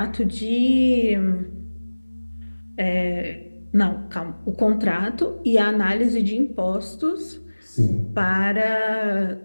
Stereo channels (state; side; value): inverted; both; correlation -1.00